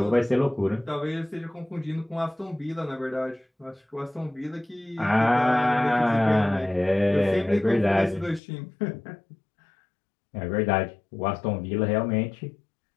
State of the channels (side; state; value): right; drops out; at 8.4 s